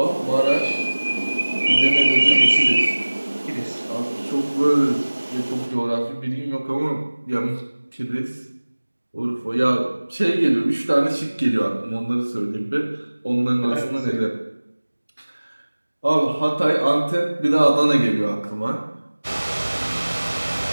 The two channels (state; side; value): inverted; both; correlation -1.00